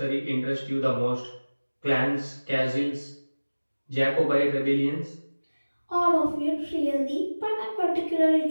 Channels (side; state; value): both; inverted; correlation -1.00